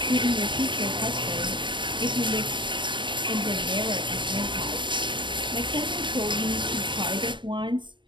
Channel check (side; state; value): left; late; 0.23 ms